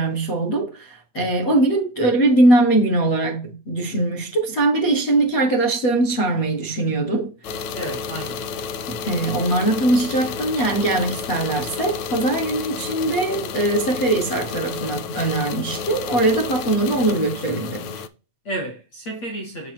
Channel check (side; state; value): right; late; 9.0 ms